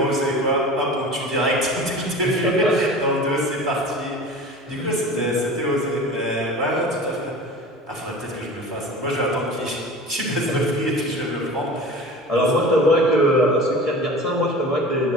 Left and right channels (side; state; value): both; normal; correlation 0.38